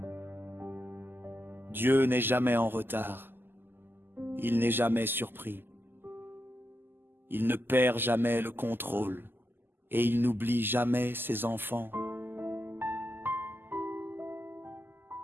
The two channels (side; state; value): left; late; 0.097 ms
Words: Dieu n'est jamais en retard. Il n'est jamais surpris. Il ne perd jamais le contrôle et il n'oublie jamais ses enfants.